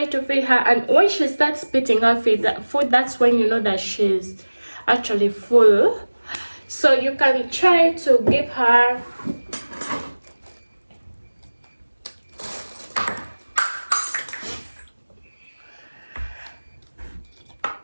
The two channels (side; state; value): both; inverted; correlation -1.00